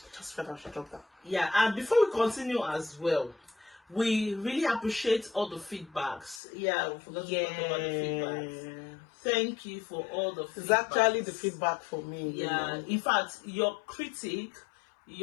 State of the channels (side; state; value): right; drops out; at 6.4 s